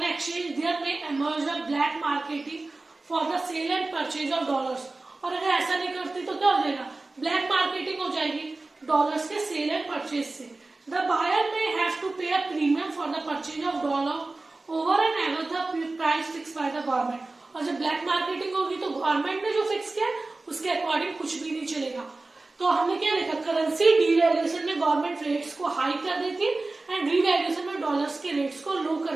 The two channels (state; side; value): quieter; left; 3.3 dB